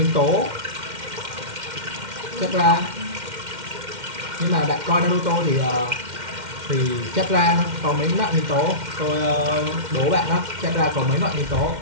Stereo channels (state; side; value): late; left; 2.1 ms